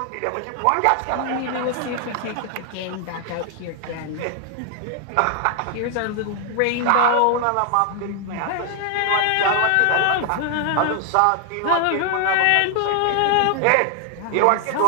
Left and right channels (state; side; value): different; both; correlation 0.00